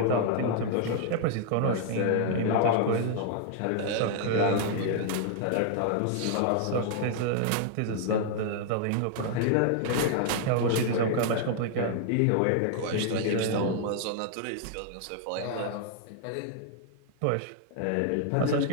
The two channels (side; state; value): both; different; correlation 0.00